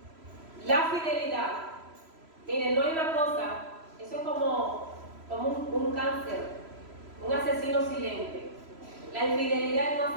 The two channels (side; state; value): left; late; 3.0 ms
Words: la fidelidad, miren, no hay una cosa, eso es como un cáncer, un asesino silente. La infidelidad es